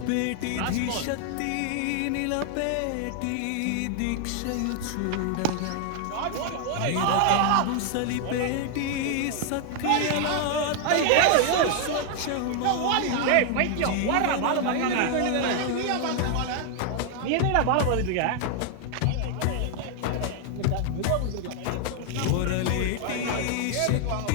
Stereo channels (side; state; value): both; different; correlation 0.00